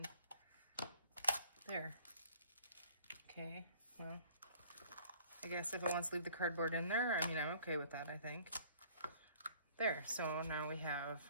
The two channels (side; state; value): both; inverted; correlation -0.55